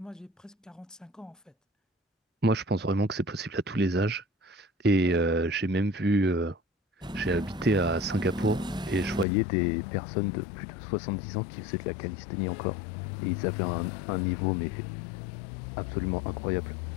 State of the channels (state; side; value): drops out; right; at 9.2 s